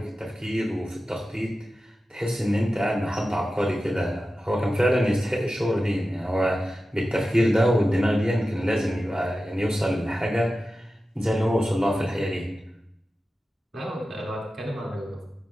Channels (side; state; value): both; normal; correlation 0.93